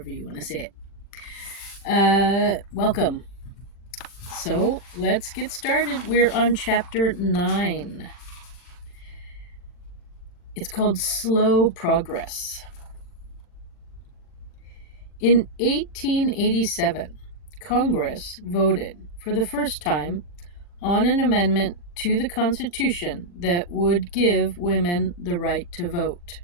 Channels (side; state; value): right; late; 40 ms